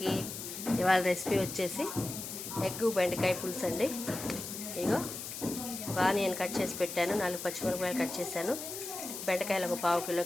ఇవాళ రెసిపీ వచ్చేసి ఎగ్గు బెండకాయ పులుసు అండి. ఇగో ఒక ఆనియన్ కట్ చేసి పెట్టాను, 4 పచ్చిమిరపకాయలు కట్ చేశాను, బెండకాయలు ఒక 1/2 కిలో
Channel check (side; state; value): left; noise; hiss, 8 dB below the sound